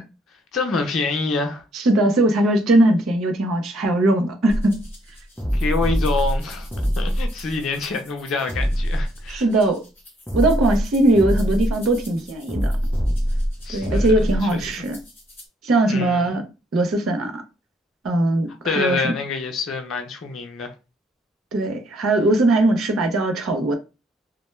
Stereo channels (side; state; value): both; normal; correlation 0.68